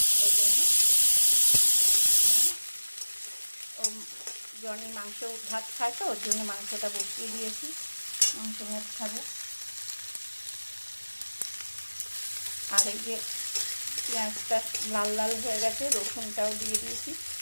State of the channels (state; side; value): inverted; both; correlation -1.00